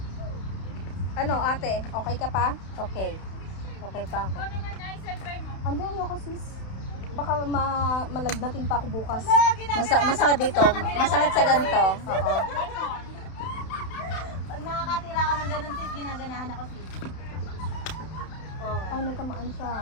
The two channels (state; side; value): late; right; 31 ms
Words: Ano ate, okay ka pa? Okay. Okay pa ako. Ikaw naman ay self-try mo. Andun ako sis. Baka malagnatin pa ako bukas. Masakit dito. Masakit sa ganito. Oo. Pag nakakatira ka ng ganun sis, ginaganahan ako sis. Oh. Ay, nagkamaan siya.